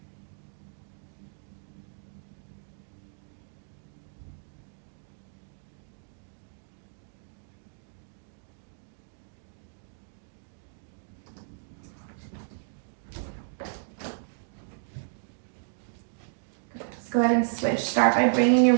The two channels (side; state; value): left; silent; digital silence